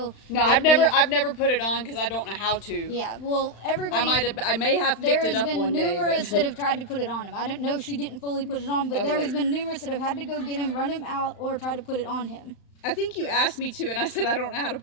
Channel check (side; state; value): right; late; 35 ms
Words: No, But I've never put it on because I don't know how to. Yeah, well, everybody. I may have There picked has it up been one day. numerous But that have tried to put it on him. I don't know if she didn't fully put it on, but was there has like- been numerous that have had to go get him, run him out, or try to put it on him. I think you asked me to, and I said I don't know how to